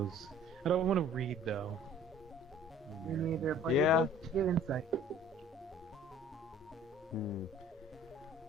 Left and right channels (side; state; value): both; normal; correlation 0.51